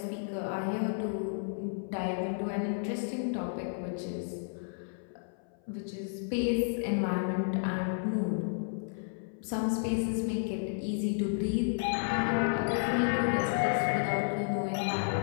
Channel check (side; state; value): right; silent; 56 dB below the other